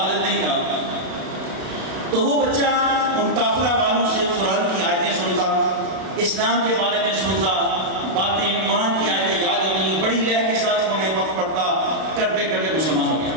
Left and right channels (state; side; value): late; left; 32 ms